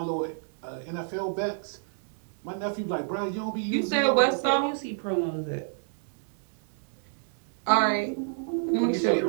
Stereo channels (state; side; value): silent; left; digital silence